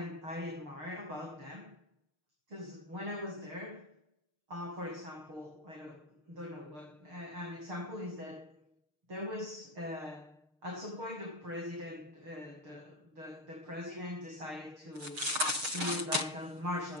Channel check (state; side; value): late; left; 6.5 ms